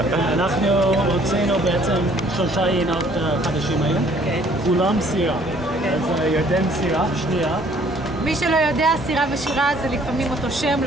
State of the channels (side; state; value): both; normal; correlation 0.59